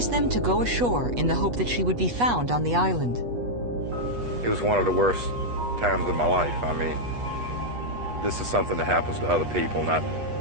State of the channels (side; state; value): left; late; 8.2 ms